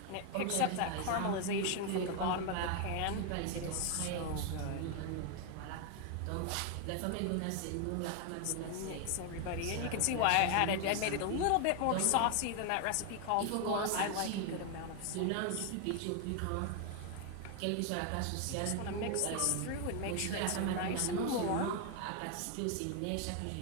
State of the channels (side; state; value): both; different; correlation 0.01